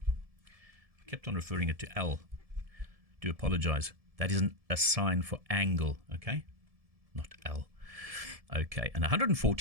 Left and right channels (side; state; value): left; late; 1.7 ms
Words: I kept on referring it to L. Do apologize. That isn't a sign for angle, okay? Not L. Okay, and